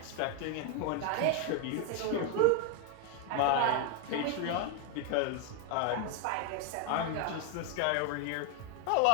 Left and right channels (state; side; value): different; both; correlation 0.01